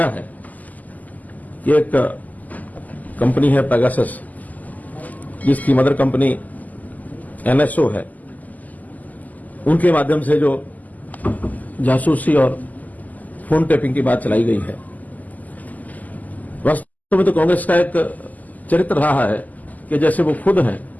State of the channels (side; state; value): right; late; 0.080 ms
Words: है, ये एक कंपनी है पेगासस, जिसकी मदर कंपनी NSO है, उनके माध्यम से जो जासूसी और फोन टेपिंग की बात चलाई गई है, वास्तव में तो कांग्रेस का एक चरित्र रहा है कि जैसे वो खुद हैं